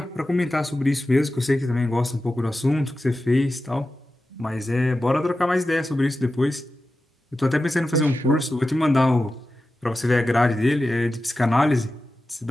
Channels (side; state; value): both; normal; correlation 0.93